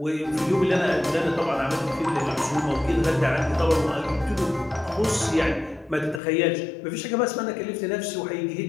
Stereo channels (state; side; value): drops out; right; at 6.2 s